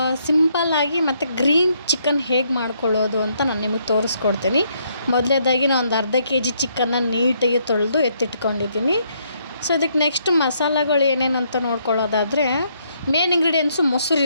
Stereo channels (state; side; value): inverted; both; correlation -0.72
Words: ಸಿಂಪಲ್ಲಾಗಿ ಮತ್ತು ಗ್ರೀನ್ ಚಿಕನ್ ಹೇಗೆ ಮಾಡ್ಕೊಳ್ಳೋದು ಅಂತ ನಾನು ನಿಮಗೆ ತೋರಿಸ್ಕೊಡ್ತೀನಿ. ಮೊದಲನೇದಾಗಿ ನಾನು ಒಂದು ಅರ್ಧ ಕೆಜಿ ಚಿಕನ್ನ ನೀಟಾಗಿ ತೊಳೆದು ಎತ್ತಿಟ್ಕೊಂಡಿದ್ದೀನಿ. ಸೊ ಇದಕ್ಕೆ ನೆಕ್ಸ್ಟ್ ಮಸಾಲೆಗಳು ಏನೇನು ಅಂತ ನೋಡ್ಕೊಳ್ಳೋದಾದರೆ, ಮೇನ್ ಇಂಗ್ರೀಡಿಯೆಂಟ್ಸು ಮೊಸರು.